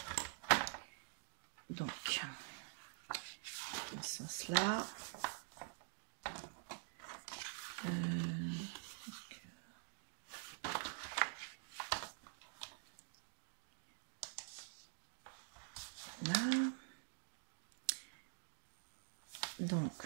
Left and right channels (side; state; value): left; silent; digital silence